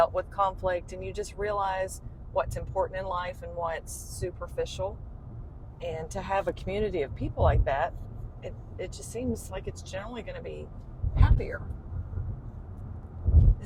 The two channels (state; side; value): identical; both; correlation 1.00